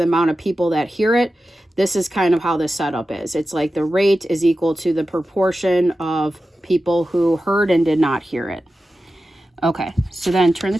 amount of people that hear it, this is kind of how the setup is. It's like the rate is equal to the proportion of people who heard and did not hear it. Okay, so then turn the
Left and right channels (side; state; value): both; normal; correlation 0.93